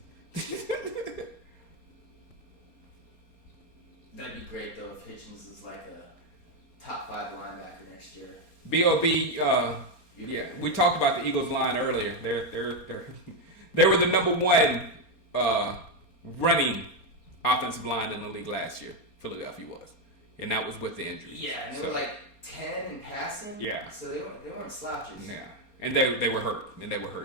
That'd be great though if Hitchens is like a top 5 linebacker next year. B.O.B. Yeah, we talked about the Eagles line earlier. They were the number 1 running offensive line in the league last year. Philadelphia was, and that was with the injuries. Yeah, and they were like 10 in passing. Yeah, so they weren't slouches. Yeah. And they were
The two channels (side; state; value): right; late; 4.3 ms